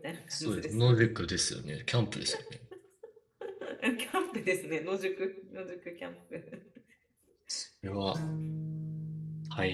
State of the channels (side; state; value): both; identical; correlation 1.00